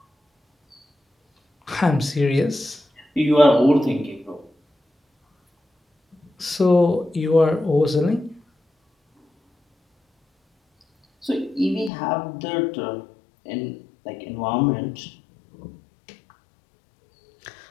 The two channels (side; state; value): right; drops out; at 11.9 s